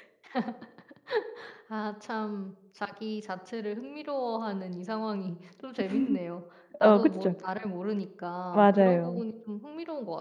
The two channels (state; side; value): identical; both; correlation 1.00